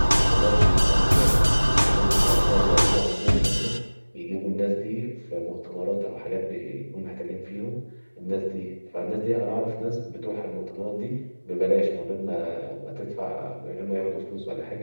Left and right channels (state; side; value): inverted; both; correlation -1.00